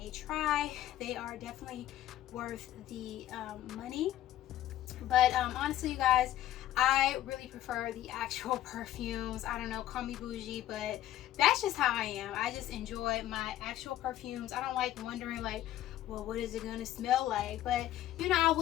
try. They are definitely worth the money. But honestly, you guys, I really prefer the actual perfumes. I don't know, call me bougie, but that's just how I am. I just enjoy my actual perfumes. I don't like wondering like, well, what is it gonna smell like? But you know, I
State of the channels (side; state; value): right; quieter; 13.3 dB